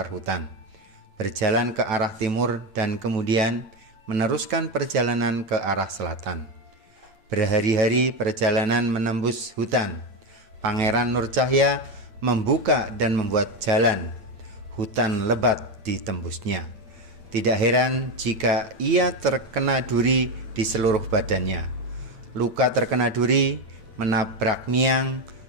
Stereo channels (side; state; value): left; late; 9.2 ms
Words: hutan, berjalan ke arah timur dan kemudian meneruskan perjalanan ke arah selatan. Berhari-hari perjalanan menembus hutan. Pangeran Nur Cahya membuka dan membuat jalan. Hutan lebat ditembusnya. Tidak heran jika ia terkena duri di seluruh badannya. Luka terkena duri, menabrak miang,